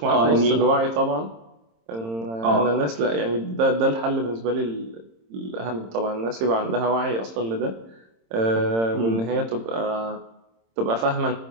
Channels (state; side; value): late; left; 26 ms